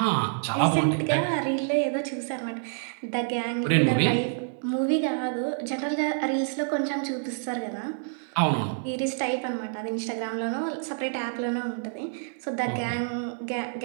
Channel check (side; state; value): left; silent; digital silence